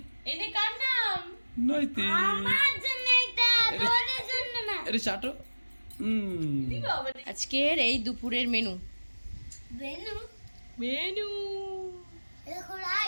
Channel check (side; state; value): both; inverted; correlation -1.00